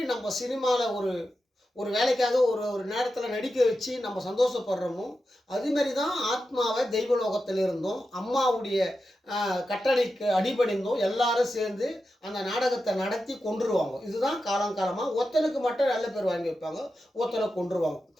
நம்ம சினிமாவில் ஒரு ஒரு வேலைக்காக ஒரு ஒரு நேரத்தில் நடிக்க வச்சு நம்ம சந்தோஷப்படுறோமோ, அதுமாரி தான் ஆத்மாவை தெய்வலோகத்தில் இருந்தோம் அம்மாவுடைய கட்டளைக்கு அடிபணிந்தோம் எல்லாரும் சேர்ந்து அந்த நாடகத்தை நடத்தி கொன்றுருவாங்க. இதுதான் காலங்காலமாக ஒருத்தனுக்கு மட்டும் நல்ல பேர் வாங்கி வைப்பாங்க, ஒருத்தனை கொன்றுருவாங்க.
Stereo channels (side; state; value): both; normal; correlation 0.90